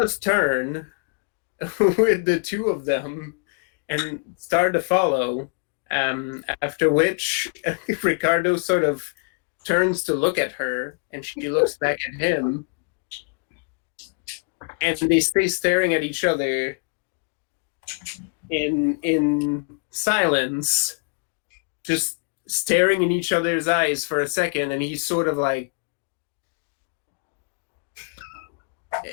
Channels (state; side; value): quieter; right; 35.1 dB